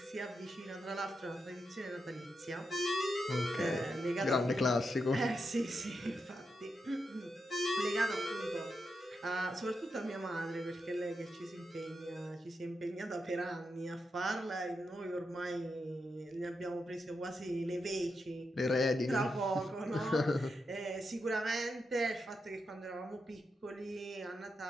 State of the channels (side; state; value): both; normal; correlation 0.85